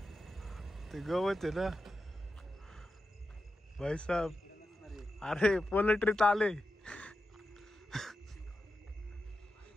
ते गवत आहे ना भाई साहब. अरे पोल्ट्रीत आले.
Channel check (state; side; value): normal; both; correlation 0.90